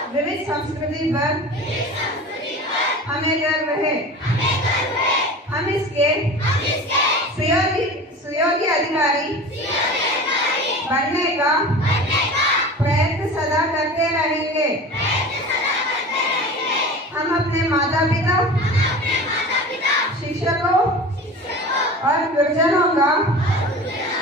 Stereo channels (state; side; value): normal; both; correlation 0.35